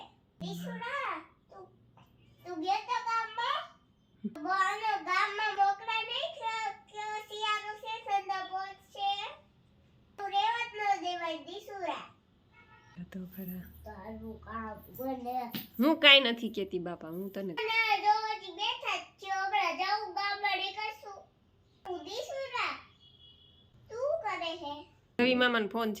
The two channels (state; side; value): identical; both; correlation 1.00